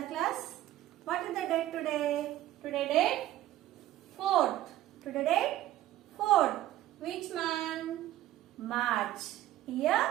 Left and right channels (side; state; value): left; quieter; 14.2 dB